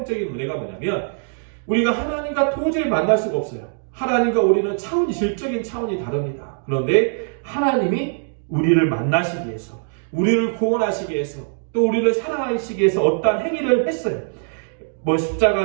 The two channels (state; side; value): silent; left; 65 dB below the other